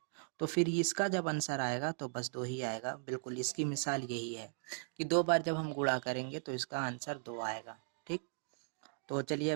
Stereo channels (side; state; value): left; silent; digital silence